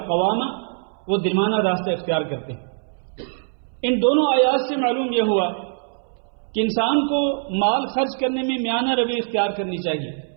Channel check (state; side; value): silent; left; 62 dB below the other